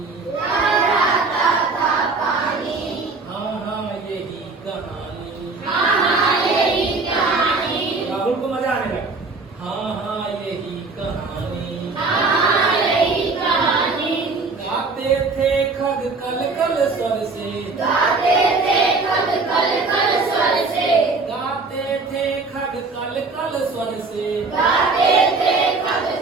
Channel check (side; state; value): left; quieter; 3.9 dB